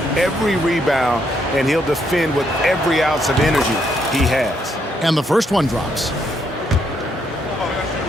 every rebound, and he'll defend with every ounce of energy he has. And the first one drops.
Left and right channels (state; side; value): normal; both; correlation 0.74